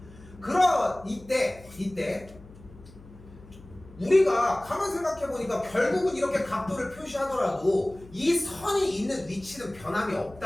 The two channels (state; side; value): noise; left; hum, 21 dB below the sound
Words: 그럼 이때 우리가 가만 생각해보니까 결국은 이렇게 각도를 표시하더라도 이 선이 있는 위치는 변함이